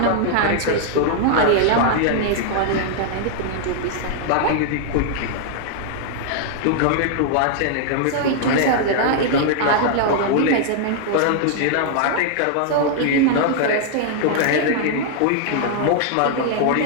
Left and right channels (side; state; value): both; different; correlation -0.01